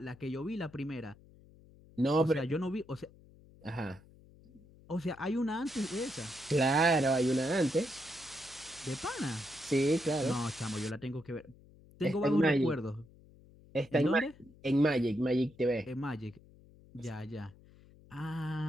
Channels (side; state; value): left; noise; hum, 24 dB below the sound